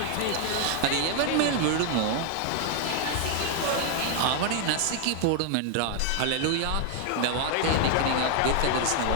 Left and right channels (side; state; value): both; different; correlation 0.00